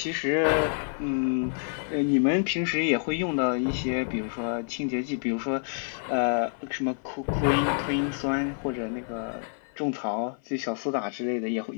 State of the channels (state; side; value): silent; right; 55 dB below the other